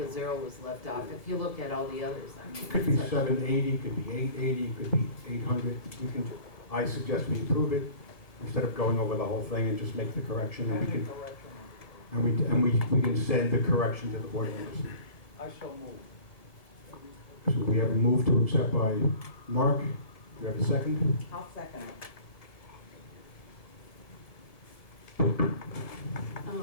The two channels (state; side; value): late; right; 1.7 ms